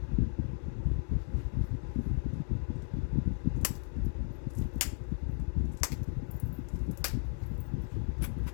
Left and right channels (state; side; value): silent; right; 55 dB below the other